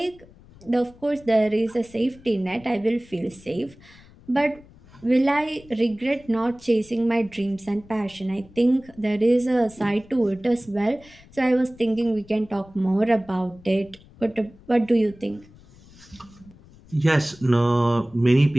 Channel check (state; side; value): noise; left; rumble, 24 dB below the sound